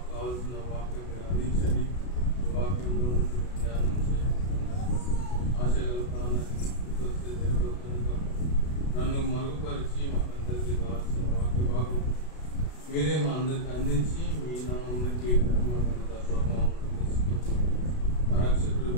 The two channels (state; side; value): late; right; 32 ms